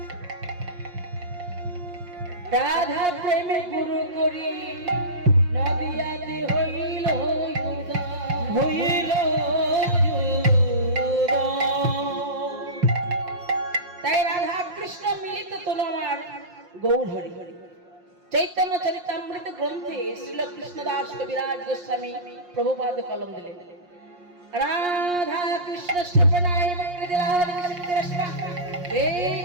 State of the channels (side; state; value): left; late; 5.6 ms